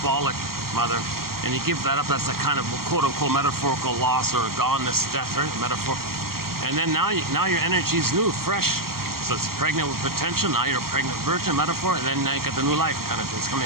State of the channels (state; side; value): late; left; 0.93 ms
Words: mother, and you give that up, that's a kind of quote-unquote metaphorical loss or goneness, death, right? Metaphor. And then now your energy is new, fresh. So it's pregnant with potential. Now you're a pregnant virgin, metaphor, and then now you got the new life kind of thing. It's